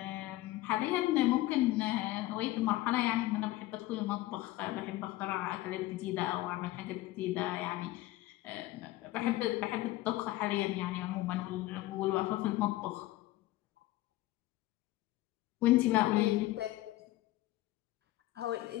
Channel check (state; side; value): quieter; right; 17.0 dB